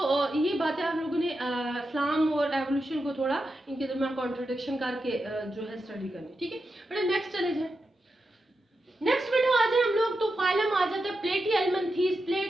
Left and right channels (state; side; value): normal; both; correlation 0.88